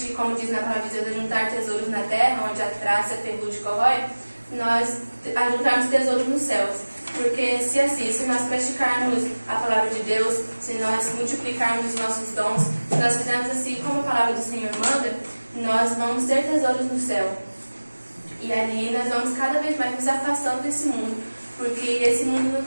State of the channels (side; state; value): both; inverted; correlation -1.00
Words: como diz na palavra de Deus, juntar tesouros na terra, onde a traça, a ferrugem corrói, nós ajuntarmos tesouros nos céus. Porque se nós praticarmos a palavra de Deus, se nós multiplicarmos os nossos dons, se nós fizermos assim como a palavra do Senhor manda, nós vamos ter tesouros no céu. E ali nós vamos cada vez mais nos afastando desse mundo, porque esse mundo não